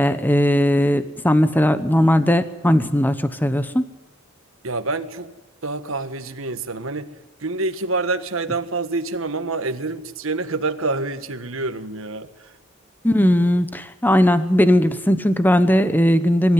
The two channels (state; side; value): normal; both; correlation 0.80